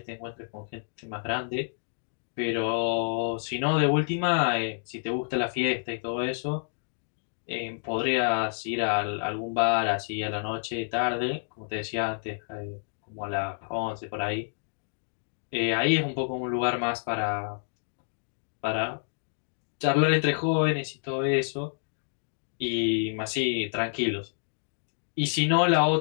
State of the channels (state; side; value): silent; right; digital silence